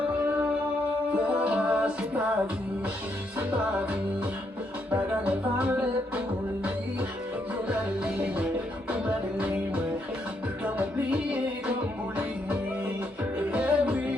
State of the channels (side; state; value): both; normal; correlation 0.76